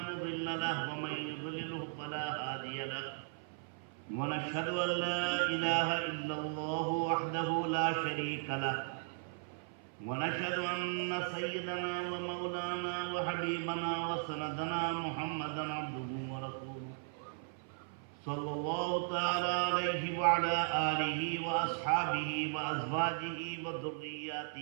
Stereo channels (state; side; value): silent; left; 53 dB below the other